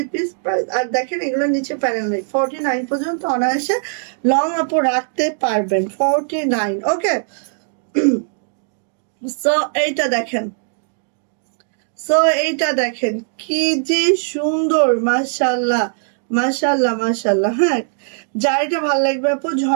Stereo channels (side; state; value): left; silent; digital silence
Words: পিস প্রাইস। আর দেখেন এগুলো নিচে প্যানেল নেই, 49 পর্যন্ত অনায়াসে লং আপু রাখতে পারবেন, 49। ওকে, সো এইটা দেখেন, সো এইটা দেখেন কি যে সুন্দর, মাশাল্লাহ মাশাল্লাহ মাশাল্লাহ। হ্যাঁ, যার এটা ভালো লাগবে আপু